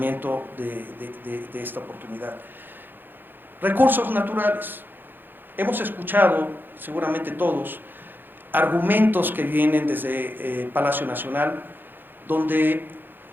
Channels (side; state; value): left; late; 0.095 ms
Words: de esta oportunidad. Recursos naturales. Hemos escuchado, seguramente todos, argumentos que vienen desde Palacio Nacional, donde